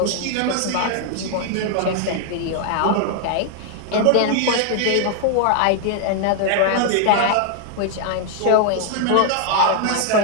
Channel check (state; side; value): different; both; correlation 0.00